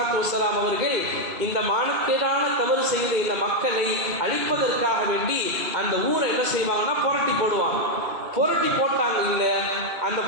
வஸ்ஸலாம் அவர்கள் இந்த மானக்கேடான தவறு செய்த இந்த மக்களை அழிப்பதற்காக வேண்டி அந்த ஊரை என்ன செய்வாங்கன்னா புரட்டி போடுவாங்க. புரட்டி போட்டாங்க. இல்லை, அந்த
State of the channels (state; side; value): late; left; 1.9 ms